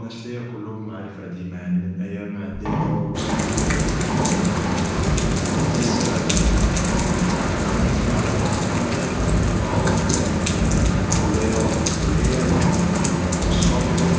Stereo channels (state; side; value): identical; both; correlation 1.00